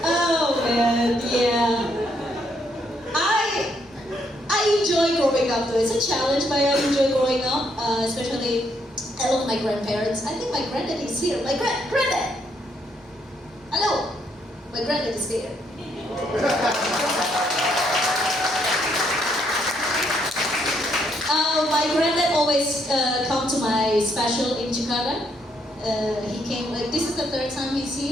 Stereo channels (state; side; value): normal; both; correlation 0.73